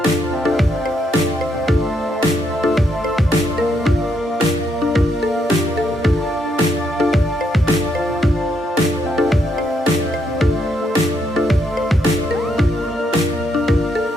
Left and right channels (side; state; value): both; normal; correlation 0.76